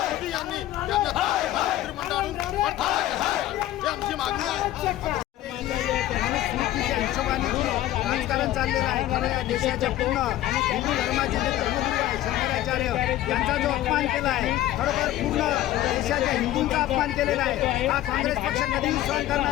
यांनी त्यांना मंत्रिमंडळातून ही आमची मागणी आहे। राजकारण चाललेलं आहे, कारण या देशाच्या पूर्ण हिंदू धर्माचे जे धर्मगुरू आहे शंकराचार्य यांचा जो अपमान केला आहे, खरोखर पूर्ण देशाच्या हिंदूंचा अपमान केलेला आहे, हा काँग्रेस पक्ष कधीही सहन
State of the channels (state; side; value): quieter; right; 14.1 dB